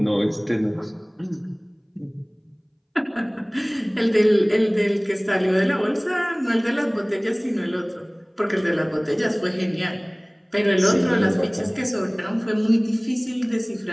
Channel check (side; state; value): both; identical; correlation 1.00